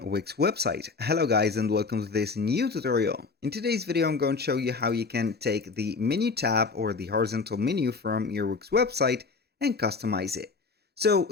Wix website. Hello guys and welcome to this new tutorial. In today's video I'm going to show you how you can take the menu tab or the horizontal menu from your Wix website and customize it. So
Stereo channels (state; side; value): quieter; right; 4.5 dB